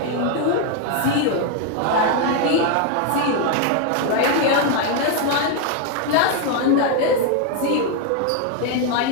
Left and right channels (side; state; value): both; different; correlation 0.01